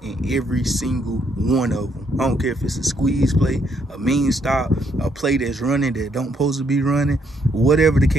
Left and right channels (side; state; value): both; normal; correlation 0.72